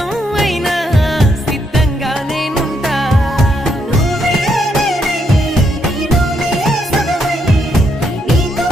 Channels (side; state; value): both; normal; correlation 0.76